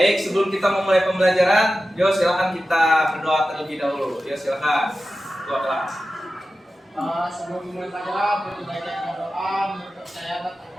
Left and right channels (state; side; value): normal; both; correlation 0.94